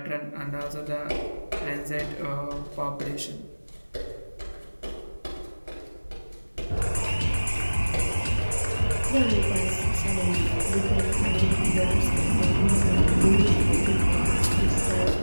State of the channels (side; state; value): both; inverted; correlation -1.00